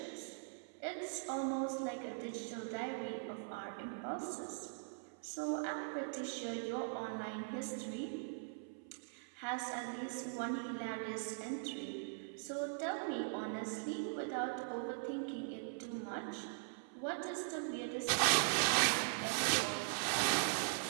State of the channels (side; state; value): left; silent; 50 dB below the other